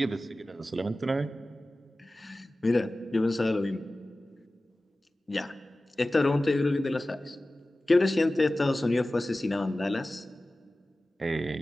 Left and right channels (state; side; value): normal; both; correlation 0.96